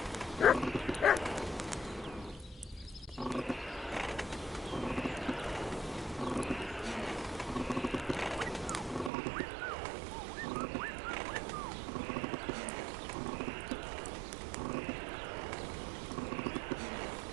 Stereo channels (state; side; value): drops out; left; at 9.1 s